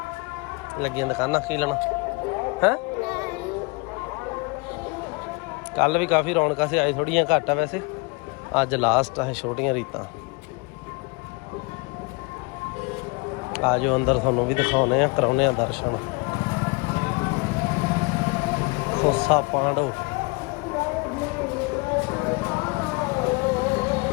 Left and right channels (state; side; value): quieter; right; 29.0 dB